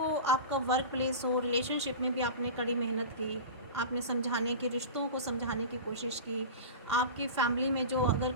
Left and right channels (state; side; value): inverted; both; correlation -0.30